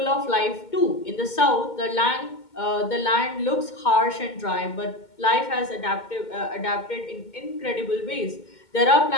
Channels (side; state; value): right; late; 2.2 ms